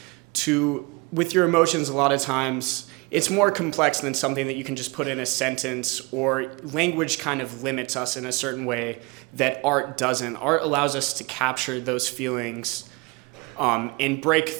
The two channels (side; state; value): left; quieter; 26.6 dB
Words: With your emotions, a lot of times, it's more complex than something that you can just put in a sentence, or language kind of limits us in a certain way that art doesn't. Art allows us to capture those feelings and break